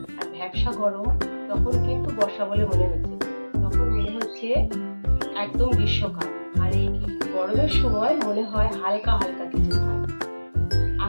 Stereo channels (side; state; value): both; inverted; correlation -1.00